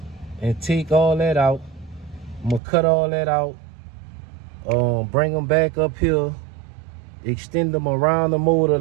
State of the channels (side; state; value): left; drops out; at 2.6 s